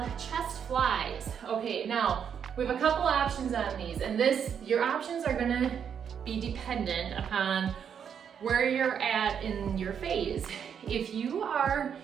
chest flies. Okay, now we have a couple options on these, and your options are gonna be dependent upon where you're at in your phase. If you are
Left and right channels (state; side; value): quieter; left; 7.8 dB